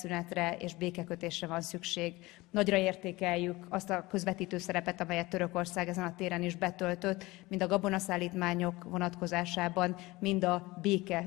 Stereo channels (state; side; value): quieter; right; 20.9 dB